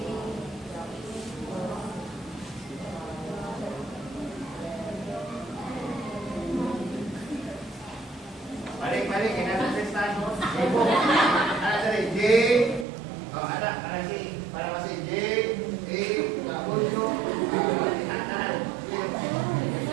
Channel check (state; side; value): drops out; left; at 12.9 s